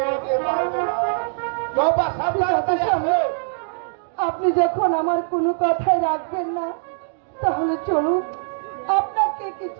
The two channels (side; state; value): left; silent; digital silence